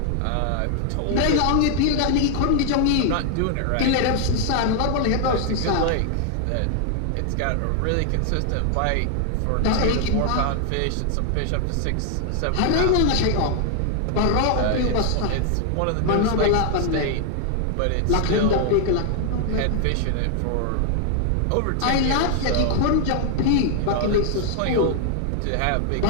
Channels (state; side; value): different; both; correlation 0.00